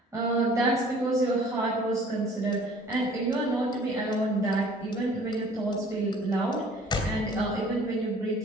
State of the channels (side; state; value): both; normal; correlation 0.52